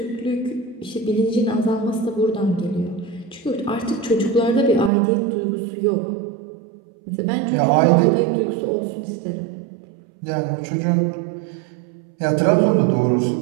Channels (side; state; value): left; drops out; at 4.9 s